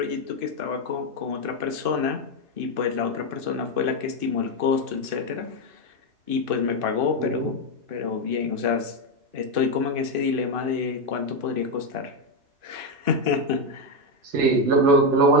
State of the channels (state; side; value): late; left; 2.6 ms